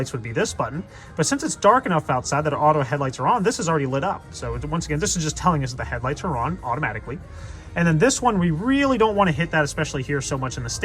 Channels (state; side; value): identical; both; correlation 1.00